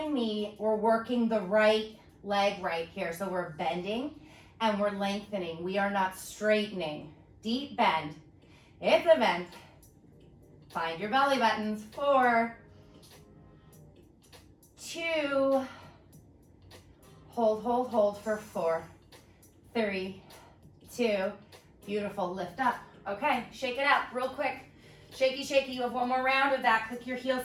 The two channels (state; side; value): identical; both; correlation 1.00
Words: me. We're working the right leg right here. So we're bending and we're lengthening. We are not straightening. Deep bend. It's a bend. Find your belly buttons. 4, 2, hold, hold, hold for 4, 3, 2, beautiful, lift up. Okay, shake it out real quick. Shaky, shaky, you have one more round of that. Click your